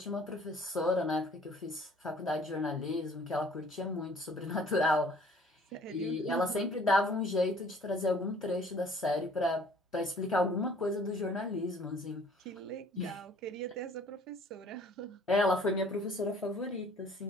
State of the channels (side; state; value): both; normal; correlation 0.55